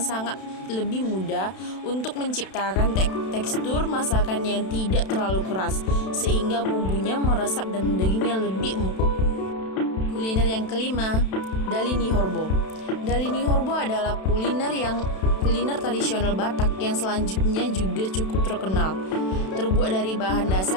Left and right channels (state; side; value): late; right; 32 ms